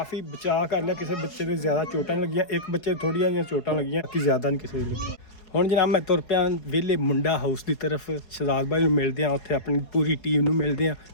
ਬਚਾਅ ਕਰ ਲਿਆ। ਕਿਸੇ ਬੱਚੇ ਦੇ ਜ਼ਿਆਦਾ ਚੋਟਾਂ ਲੱਗੀਆਂ, ਇੱਕ ਬੱਚੇ ਥੋੜੀਆਂ ਜਿਹੀਆਂ ਚੋਟਾਂ ਲੱਗੀਆਂ, ਬਾਕੀ ਜ਼ਿਆਦਾ ਨਹੀਂ ਕਿਸੇ ਦੇ ਲੱਗੀਆਂ। ਹੁਣ ਜਨਾਬ ਮੈਂ ਤੁਰ ਪਿਆ ਵਿਹਲੇ ਮੁੰਡਾ ਹਾਊਸ ਦੀ ਤਰਫ। ਸ਼ਹਜ਼ਾਦ ਭਾਈ ਨੂੰ ਮਿਲਦੇ ਆ, ਉੱਥੇ ਆਪਣੀ ਪੂਰੀ ਟੀਮ ਨੂੰ ਮਿਲਦੇ ਆ।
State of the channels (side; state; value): right; late; 4.8 ms